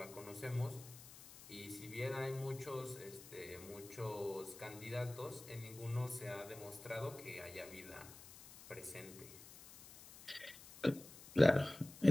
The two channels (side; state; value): left; noise; hiss, 16 dB below the sound